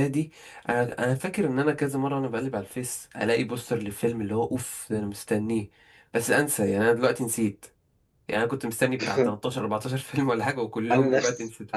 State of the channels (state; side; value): identical; both; correlation 1.00